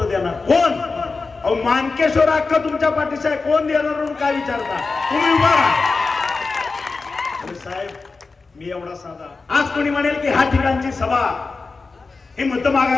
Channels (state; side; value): quieter; right; 4.1 dB